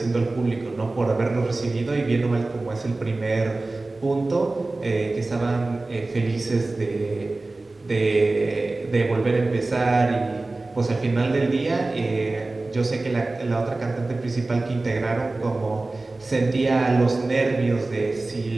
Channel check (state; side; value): quieter; left; 3.2 dB